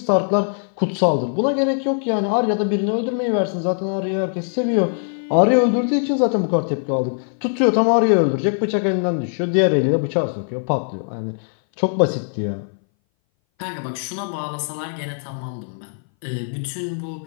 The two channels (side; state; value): right; silent; 60 dB below the other